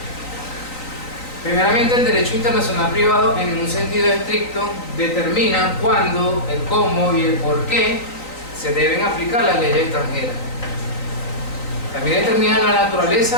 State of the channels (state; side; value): late; right; 3.9 ms